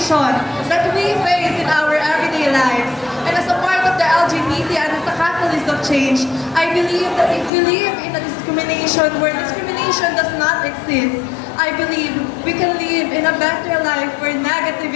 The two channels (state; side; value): drops out; right; at 7.5 s